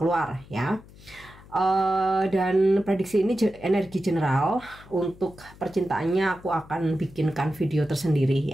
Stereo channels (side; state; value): left; noise; hum, 22 dB below the sound